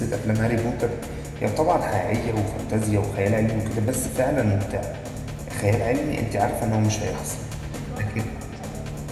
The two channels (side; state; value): both; identical; correlation 1.00